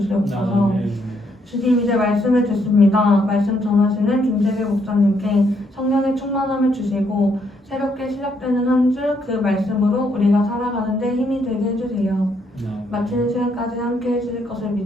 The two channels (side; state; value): both; normal; correlation 0.73